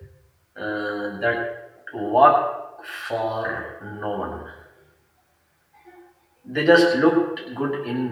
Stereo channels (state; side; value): identical; both; correlation 1.00